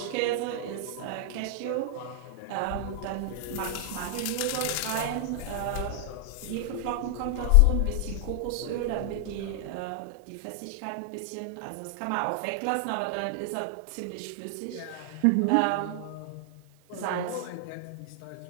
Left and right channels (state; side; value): different; both; correlation 0.00